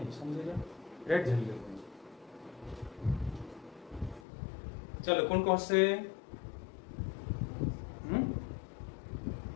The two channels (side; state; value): right; drops out; at 4.2 s